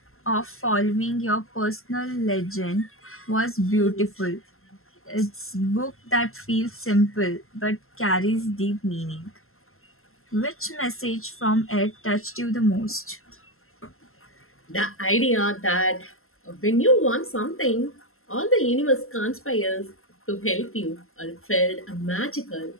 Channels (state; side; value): late; right; 0.62 ms